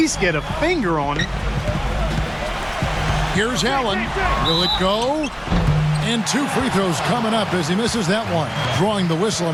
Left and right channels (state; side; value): identical; both; correlation 1.00